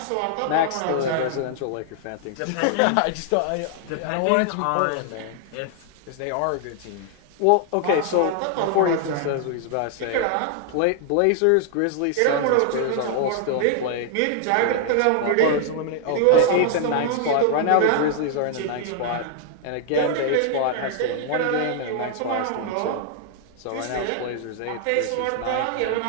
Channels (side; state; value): both; different; correlation 0.00